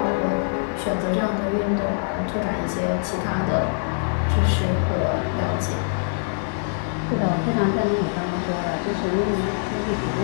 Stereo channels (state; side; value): silent; right; 63 dB below the other